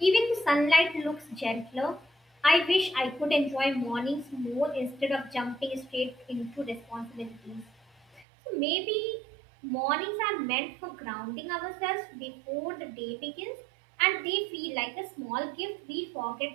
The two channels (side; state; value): left; drops out; at 8.2 s